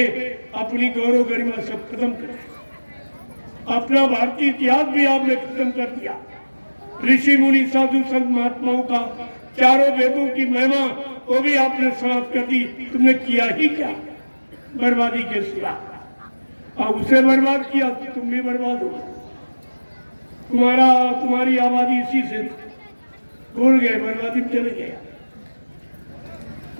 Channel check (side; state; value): both; inverted; correlation -1.00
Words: अपनी गौरव गरिमा सब खत्म कर दिया। अपना भारतीय इतिहास भी आपने खत्म कर दिया। ऋषि मुनि साधु संत महात्माओं का 4 वेदों की महिमा वो भी आपने समाप्त कर दी। तुमने किया ही क्या? बर्बादी के सिवा। अब उसे बर्बाद किया तो तुम भी बर्बाद हो। तुम्हारी आबादी इसी से भूल गए, बर्बादी में चले गए।